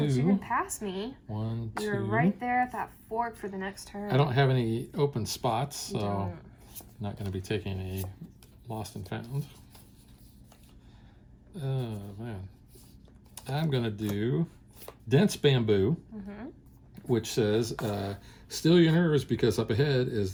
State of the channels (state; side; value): identical; both; correlation 1.00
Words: you're gonna pass me. 1, 2. You're right there at that fork for the next turn. I don't have any open spots, so Don't. I'm not going to be taking a lost and found. Oh man. I'm going to do dense bamboo, which says, still your nerves because up ahead